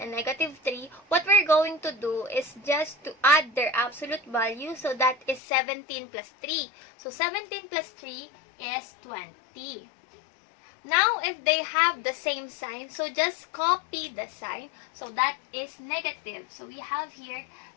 negative 3, what we're going to do is just to add their absolute value. So that is 17 plus 3. So 17 plus 3 is 20. Now, if they have the same sign, so just copy the sign. So that is negative. So we have here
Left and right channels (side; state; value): right; drops out; at 5.4 s